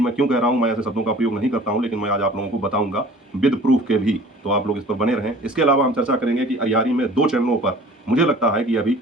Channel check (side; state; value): both; normal; correlation 0.47